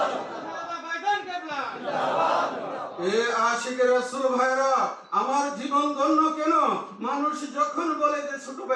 এ আশিকে রাসূল ভাইরা, আমার জীবন ধন্য কেন? মানুষ যখন বলে যে ছোট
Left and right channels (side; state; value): both; identical; correlation 1.00